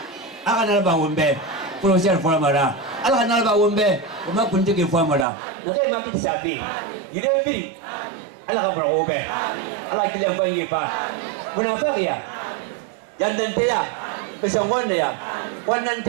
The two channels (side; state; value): left; drops out; at 5.2 s